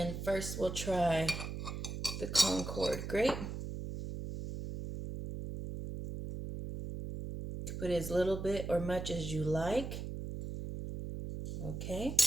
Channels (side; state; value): right; noise; hum, 6 dB below the sound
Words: first we'll try the Concord grape. Put as little bit or much as you like. Okay.